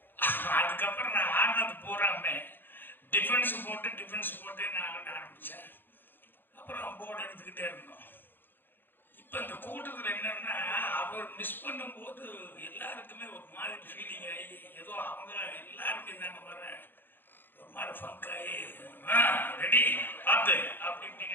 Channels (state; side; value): late; right; 0.097 ms